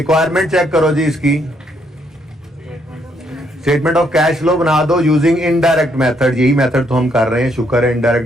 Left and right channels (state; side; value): normal; both; correlation 0.72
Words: चेक करो जी इसकी। स्टेटमेंट ऑफ कैश फ्लो बना दो यूजिंग इनडायरेक्ट मेथड, यही मेथड तो हम कर रहे हैं, शुक्र है